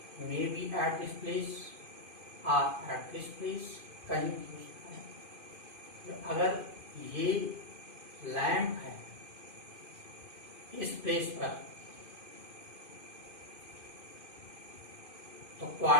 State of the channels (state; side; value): late; left; 2.5 ms